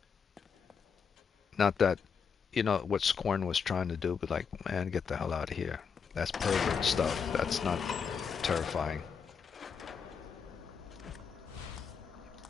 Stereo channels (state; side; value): quieter; right; 6.3 dB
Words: Not that, you know, what Scorn was trying to do, but like, man, get the hell out of here. That's pervert stuff. That's not terrifying.